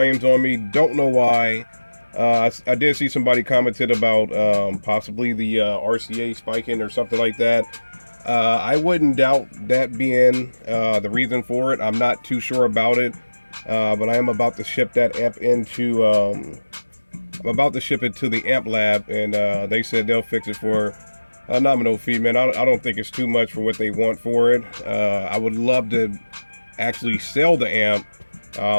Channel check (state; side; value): inverted; both; correlation -1.00